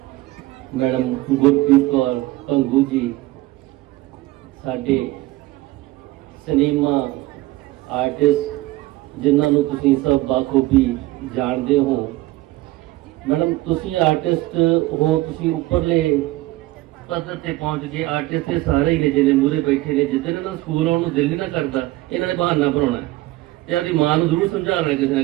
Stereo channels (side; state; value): left; quieter; 18.4 dB